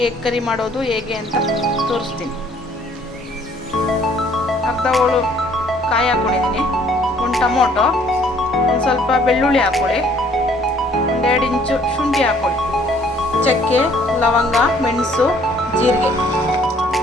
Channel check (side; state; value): both; normal; correlation 0.60